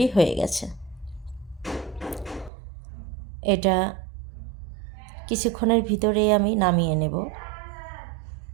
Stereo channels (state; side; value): drops out; left; at 2.5 s